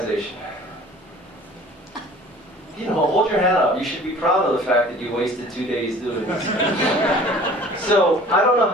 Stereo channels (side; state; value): both; normal; correlation 0.47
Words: You know, hold your hand up. You should be proud of the fact that you wasted 2 days doing this. So, I don't know